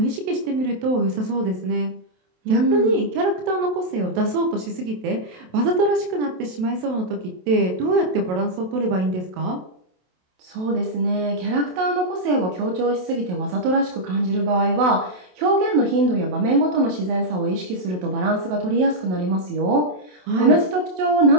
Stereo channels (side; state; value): left; late; 27 ms